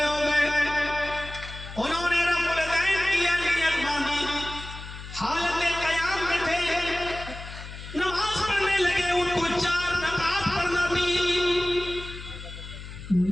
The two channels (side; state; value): left; noise; hum, 12 dB below the sound